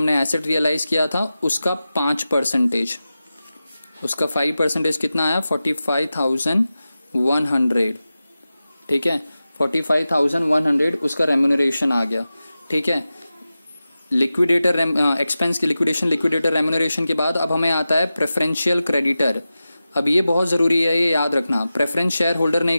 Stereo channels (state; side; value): inverted; both; correlation -0.94